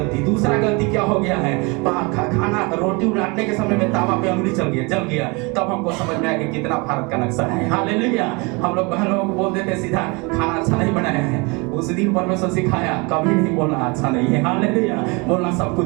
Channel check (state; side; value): quieter; left; 28.5 dB